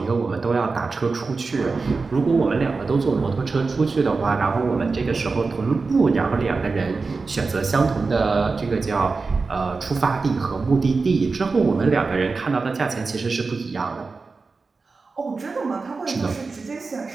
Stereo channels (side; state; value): left; quieter; 4.2 dB